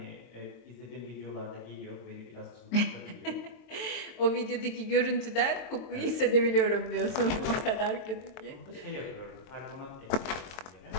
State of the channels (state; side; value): late; right; 23 ms